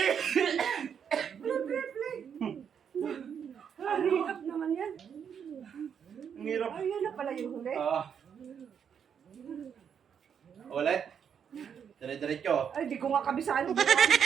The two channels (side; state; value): left; quieter; 7.7 dB